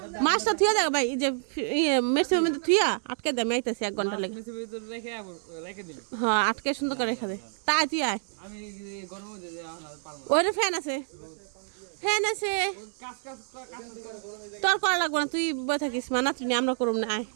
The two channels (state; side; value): silent; left; digital silence